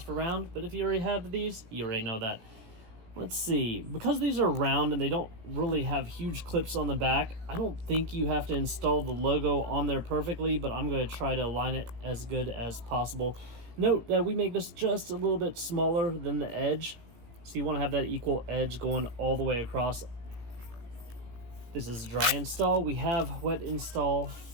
for round, but if you already have these, you already know that. Let's see, because these are round and they don't really have huge clips on the back, I don't think you have to install the logo on there perfectly, but I'm going to try to align it as good as possible. Note that we make this just a little bit smaller than the edge, so you want to have that equal edge going all the way across. This is dry install. We have wet install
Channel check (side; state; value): left; late; 17 ms